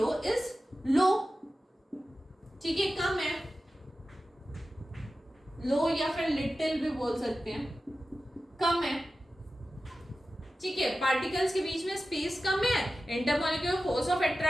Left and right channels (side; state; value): both; normal; correlation 0.94